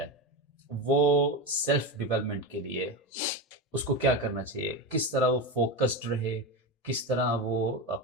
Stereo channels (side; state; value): both; normal; correlation 0.18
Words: وہ سیلف ڈیولپمنٹ کے لیے اس کو کیا کرنا چاہیے, کس طرح وہ فوکسڈ رہے, کس طرح وہ